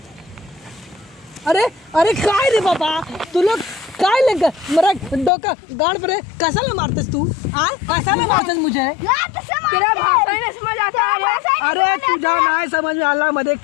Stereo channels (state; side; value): drops out; right; at 5.3 s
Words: अरे अरे काय रे बाबा तू लोग काय लग मेरा डोका गांड पर कैसा ले मारतेस तू? कैसा ले मारतेस मुझे? तेरा भाषा ही नहीं समझ आता है। अरे तू जा ना समझ में आला मध्ये